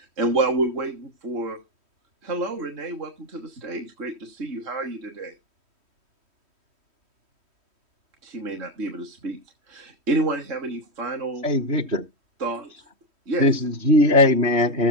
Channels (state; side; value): late; left; 3.1 ms